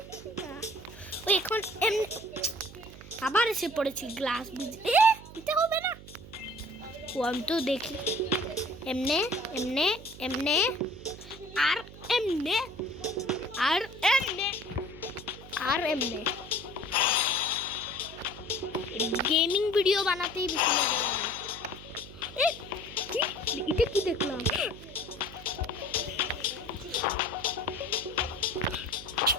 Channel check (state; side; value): noise; right; hum, 16 dB below the sound